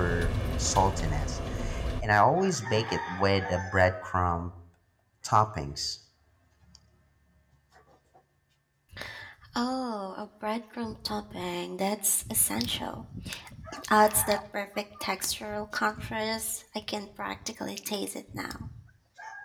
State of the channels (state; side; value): identical; both; correlation 1.00